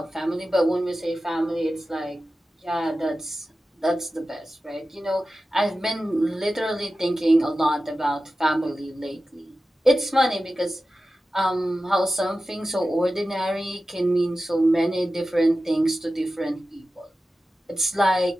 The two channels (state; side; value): normal; both; correlation 0.94